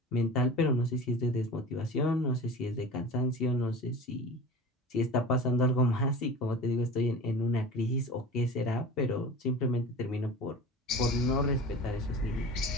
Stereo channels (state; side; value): normal; both; correlation 0.36